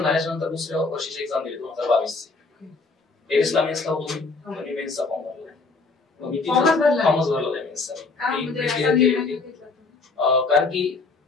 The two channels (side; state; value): right; quieter; 4.0 dB